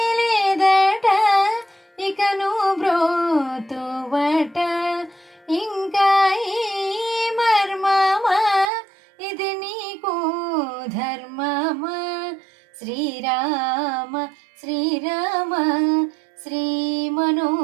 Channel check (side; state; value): left; drops out; at 8.7 s